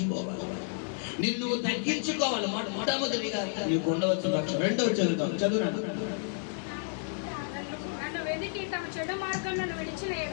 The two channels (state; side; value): silent; right; digital silence